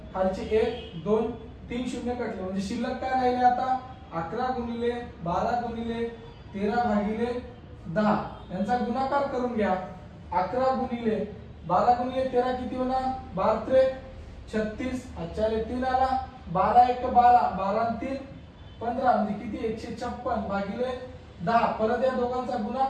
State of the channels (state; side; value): identical; both; correlation 1.00